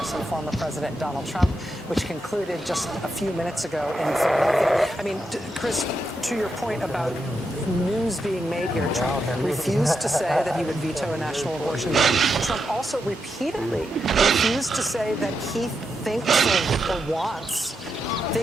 and former President Donald Trump, which concluded just a few minutes ago in Philadelphia. I mean, Chris, to your point about news being made here, Trump refused to say that he would veto a national abortion ban. Trump also repeatedly refused to say that he thinks or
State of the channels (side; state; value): both; normal; correlation 0.84